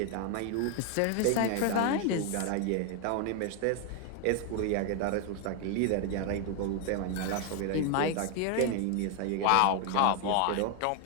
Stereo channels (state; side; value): different; both; correlation 0.00